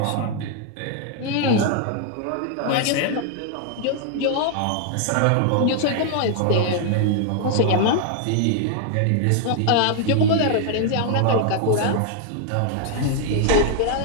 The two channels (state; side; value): different; both; correlation 0.00